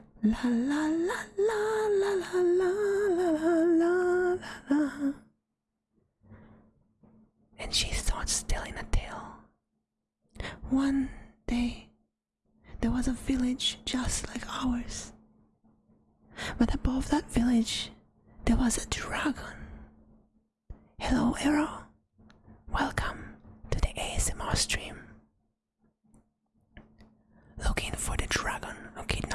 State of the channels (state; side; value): identical; both; correlation 1.00